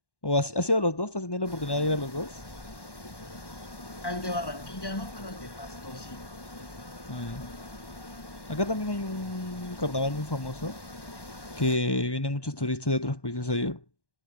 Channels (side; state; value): right; late; 1.1 ms